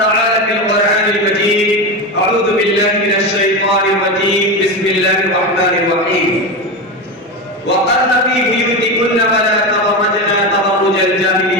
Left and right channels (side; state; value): both; normal; correlation 0.19